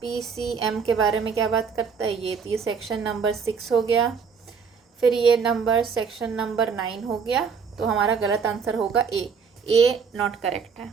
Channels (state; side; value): quieter; left; 6.0 dB